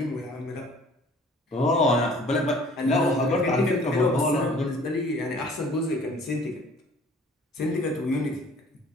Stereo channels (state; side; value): normal; both; correlation 0.52